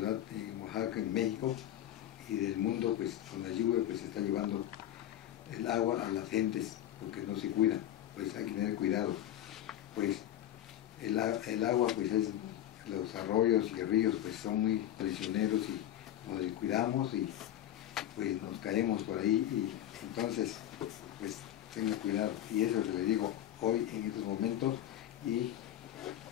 en Oaxaca, en México, y del mundo, pues con la lluvia pues se está llevando el agua a las gentes, porque no se cuidan, pues hay que tener cuidado. Pues el agua, pues es, los arroyos y ríos pues son muy traicioneros y nos descuidamos y pues nos caemos por ahí, y entonces pues tenga cuidado, y eso es lo que le digo hoy en estos momentos. Y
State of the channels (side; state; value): right; quieter; 12.1 dB